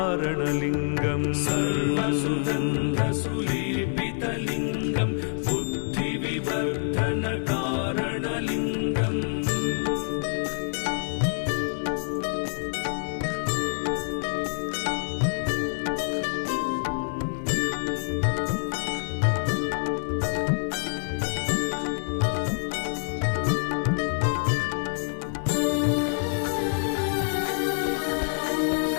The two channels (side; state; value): right; silent; 60 dB below the other